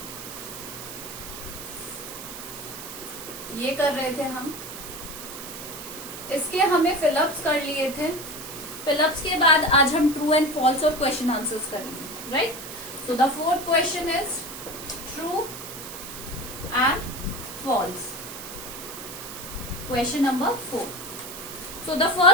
ये कर रहे थे हम, इसके हमें फिलअप्स कर लिए थे। फिलअप्स के बाद आज हम ट्रू एंड फॉल्स और क्वेश्चन आंसर्स करेंगे, right. So the fourth question is true and false. Question number 4। So the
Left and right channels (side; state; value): right; noise; hiss, 10 dB below the sound